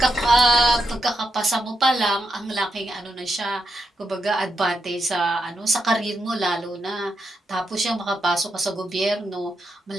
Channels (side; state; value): both; normal; correlation 0.83